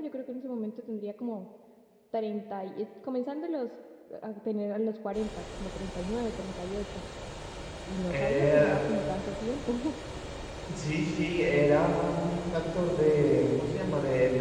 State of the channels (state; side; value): identical; both; correlation 1.00